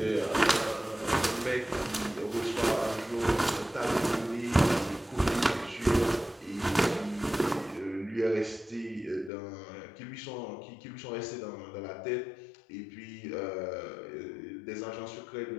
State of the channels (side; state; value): right; drops out; at 9.3 s